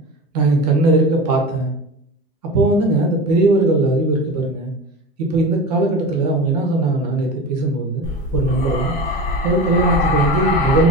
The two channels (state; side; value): normal; both; correlation 0.30